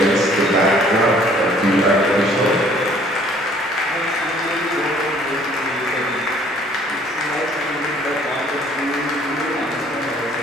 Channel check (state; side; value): normal; both; correlation 0.58